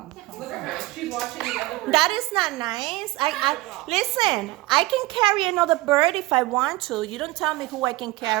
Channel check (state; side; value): quieter; left; 19.5 dB